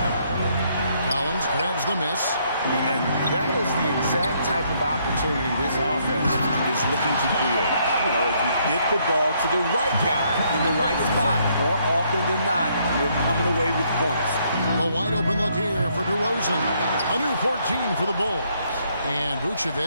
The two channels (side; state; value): both; inverted; correlation -0.70